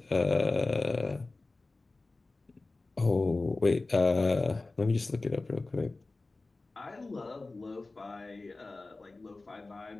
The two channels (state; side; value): quieter; right; 3.3 dB